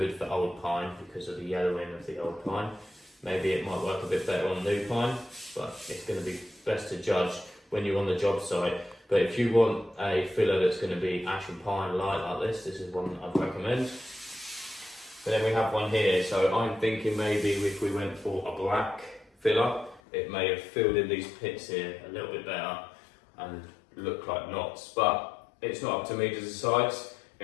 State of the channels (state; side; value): drops out; right; at 20.0 s